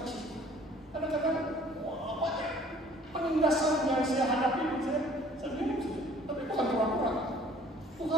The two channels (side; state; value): both; normal; correlation 0.54